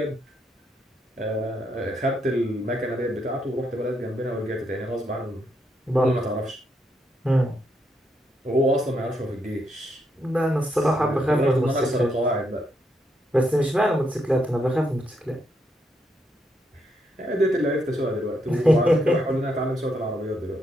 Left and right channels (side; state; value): both; normal; correlation 0.78